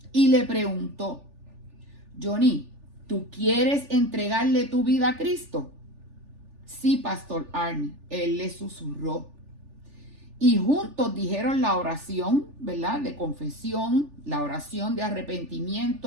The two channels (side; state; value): left; late; 3.4 ms